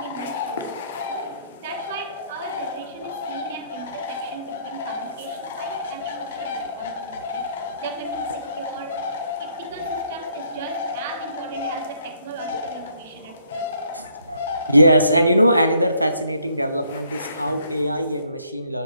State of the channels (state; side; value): inverted; both; correlation -0.67